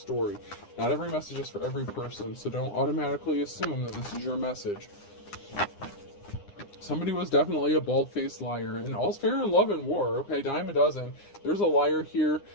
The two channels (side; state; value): right; late; 9.8 ms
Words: Not every message is for every person, so don't automatically assume that this is your message. Somebody was definitely a bald-faced liar, and all's fair in love and war, okay, dime a dozen. There's a liar here